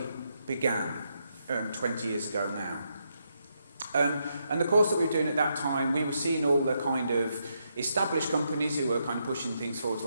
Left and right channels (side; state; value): both; inverted; correlation -0.80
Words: began 20 years ago now. And the course that we were doing at that time, we were seeing all the kind of established companies who were kind of pushing things forwards,